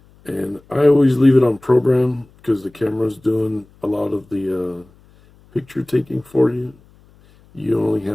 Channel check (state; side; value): noise; left; hum, 29 dB below the sound